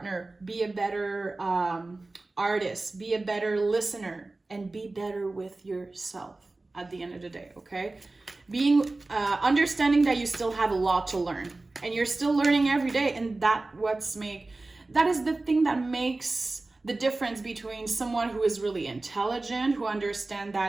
be a better artist, be a better listener, and be better with yourself at the end of the day, okay? Understanding that you still have a lot to learn, and you're still learning every day, and that is the thing that makes the difference between someone who is really intelligent, who understands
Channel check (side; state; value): left; quieter; 3.2 dB